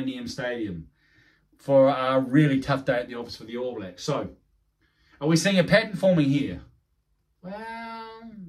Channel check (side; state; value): both; identical; correlation 1.00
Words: Stadium for a really tough day at the office for the All Blacks. So, are we seeing a pattern forming here? Well,